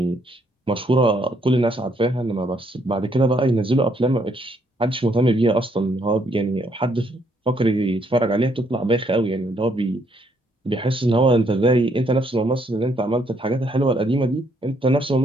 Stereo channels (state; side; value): normal; both; correlation 0.71